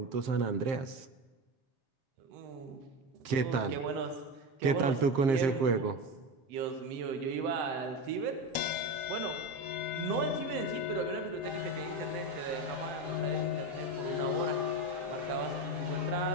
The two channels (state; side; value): late; left; 7.5 ms